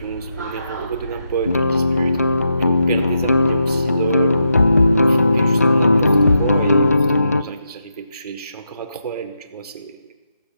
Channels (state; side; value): inverted; both; correlation -0.84